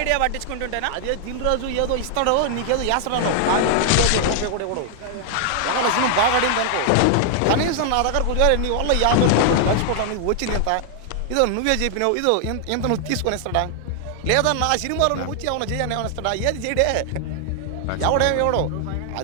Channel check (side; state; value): both; different; correlation 0.00